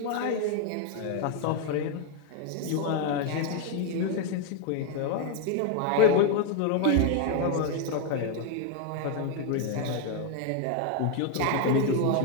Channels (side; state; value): both; different; correlation 0.01